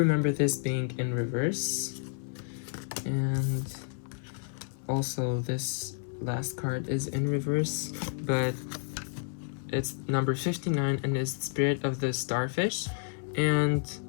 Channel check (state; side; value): silent; right; 57 dB below the other